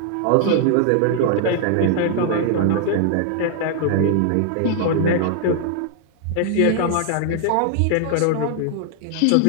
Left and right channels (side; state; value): both; different; correlation 0.00